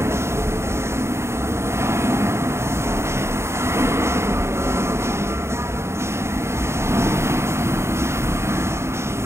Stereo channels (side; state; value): left; late; 0.13 ms